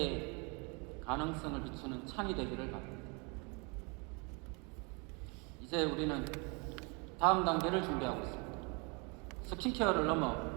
가능성을 비추는 창이 되기를 바랍니다. 이제 우리는 다음 단계를 준비하고 있습니다. 스킨케어를 넘어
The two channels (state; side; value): quieter; left; 31.9 dB